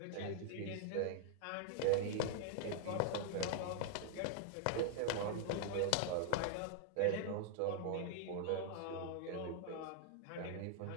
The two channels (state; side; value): different; both; correlation 0.00